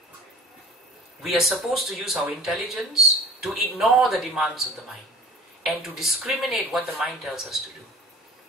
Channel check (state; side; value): normal; both; correlation 0.42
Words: We are supposed to use our intelligence to ignore the demands of the mind and to discriminate what the mind tells us to do.